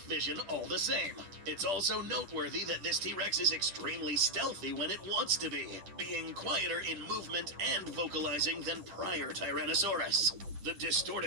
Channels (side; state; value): left; late; 10 ms